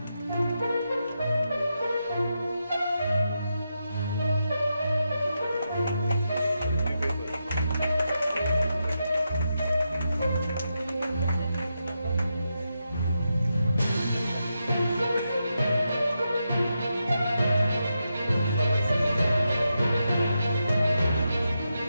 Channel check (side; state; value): both; inverted; correlation -0.86